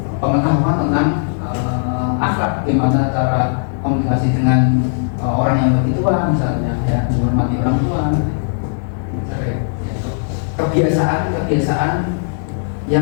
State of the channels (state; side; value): silent; right; digital silence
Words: pengetahuan tentang akhlak, bagaimana cara komunikasi dengan orang yang lebih tua misalnya, ya, menghormati orang tua, ya. Kebiasaan